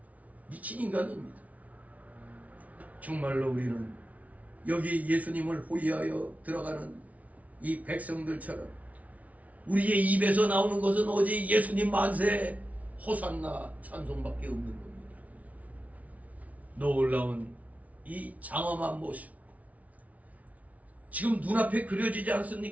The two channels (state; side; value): late; left; 0.069 ms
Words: 미친 인간입니다. 정말로 우리는 여기 예수님을 호위하여 들어가는 이 백성들처럼 우리의 입에서 나오는 것은 오직 예수님 만세 호산나 찬송밖에 없는 겁니다. 놀라운 이 장엄한 모습 지금 눈앞에 그려지지